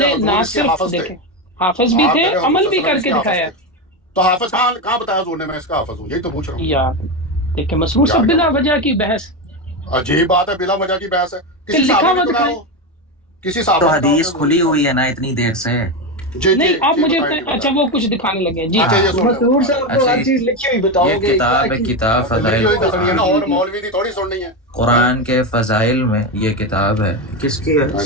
حضور نہ اس کے صرف حافظ تھے. دیکھیں حافظ بھی آپ تھے، کہہ رہے ہو عمل حضور بھی صلی اللہ کر علیہ کے وسلم اس دکھایا. حافظ تھے. تو حافظ کہاں بتایا حضور نے میں اس کا حافظ ہوں؟ یہی تو پوچھ رہا ہوں. یار دیکھیں مسرور صاحب بلا وجہ کی بحث، عجیب بات ہے، بلا وجہ کی بحث ہے. کہ کسی لکھا صحابہ ہوا نے دکھائیں. کسی صحابہ تو نے حدیث کھلی ہوئی ہے نا اتنی دیر سے. نہیں آپ مجھے اچھا وہ کچھ دکھانے لگے. جی مسرور صاحب کو ہر چیز لکھی ہوئی بتاؤ یہ گے. کتاب فضائل اور مولوی دی تھوڑی سننی ہے. قرآن کے فضائل میں یہ کتاب ہے. کس کی ہے؟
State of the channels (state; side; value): normal; both; correlation 0.13